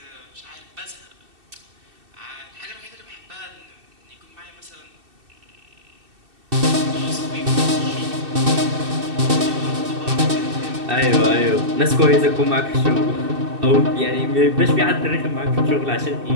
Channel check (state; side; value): late; left; 2.7 ms